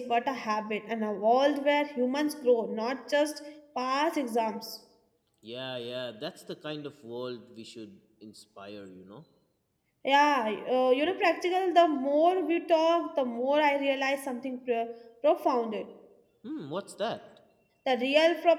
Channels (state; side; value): identical; both; correlation 1.00